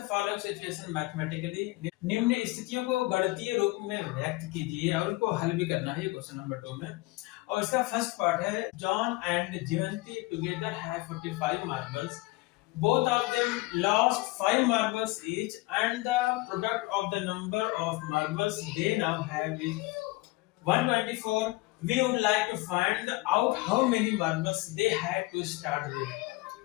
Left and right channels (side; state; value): right; quieter; 21.6 dB